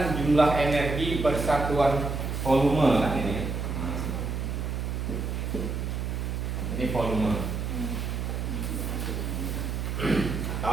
jumlah energi persatuan volume kan ini. Ini volume.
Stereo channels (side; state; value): right; noise; hum, 2 dB below the sound